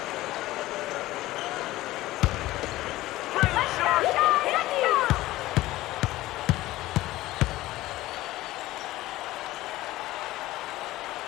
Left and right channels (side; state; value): right; quieter; 17.0 dB